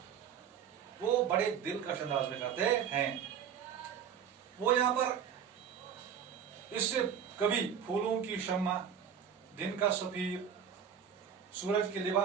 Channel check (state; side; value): quieter; left; 8.1 dB